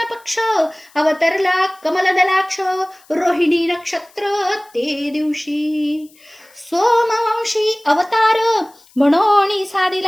पक्ष. अवतरला कमलदलाक्ष रोहिणी नक्षत्र ते दिवशी. सोमवंशी अवतार म्हणून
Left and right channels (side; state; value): left; noise; hiss, 29 dB below the sound